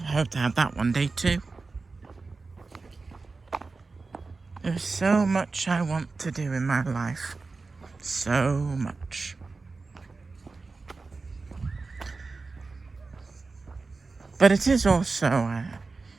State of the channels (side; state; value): left; quieter; 4.0 dB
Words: to have that one day too. There's so much I want to do in my life. So much. But it is also,